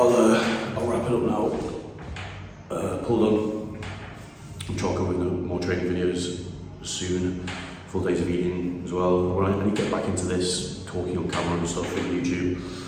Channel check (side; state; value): both; identical; correlation 1.00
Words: wrap it up now. Pull done. I'm trying to come with more training videos soon, full days of eating as well. When I need to get back into this, talking on camera and stuff on YouTube.